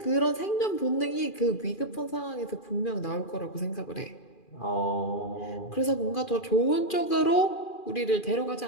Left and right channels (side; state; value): right; late; 2.4 ms